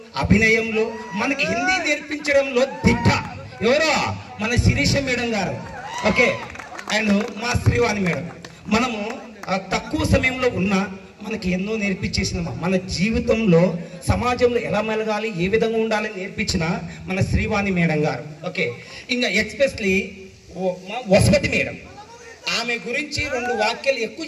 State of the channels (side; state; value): both; identical; correlation 1.00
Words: అభినయంలో మనకి హిందీ నేర్పించడంలో దిట్ట ఎవరో మన శిరీష మేడం గారు. ఓకే, అండ్ మా శ్రీవాణి మేడం. మనము తక్కువ సమయంలో ఉన్న మనకి ఎన్నో నేర్పించేసిన, మన జీవితంలో సమాజంలో ఎలా మెలగాలి, ఏ విధంగా ఉండాలని నేర్పించిన మన శ్రీవాణి మేడం గారు. ఓకే, ఇంకా ఎక్స్పెషలీ మా వసపతి మేడం. ఆమె గురించి 2 వాక్యాలు ఎక్కువ